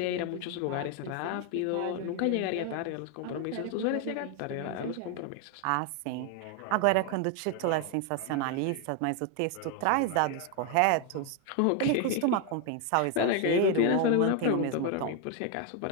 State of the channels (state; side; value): different; both; correlation 0.01